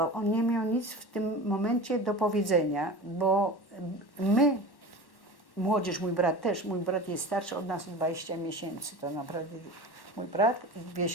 On nie miał nic w tym momencie do powiedzenia, bo my, młodzież, mój brat też, mój brat jest starszy od nas 20 miesięcy, to naprawdę mój brat i 2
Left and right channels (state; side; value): late; right; 1.1 ms